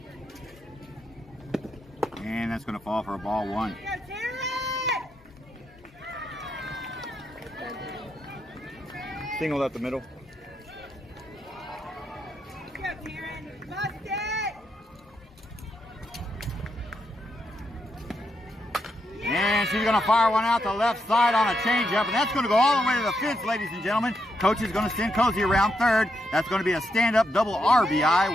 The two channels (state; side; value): normal; both; correlation 0.81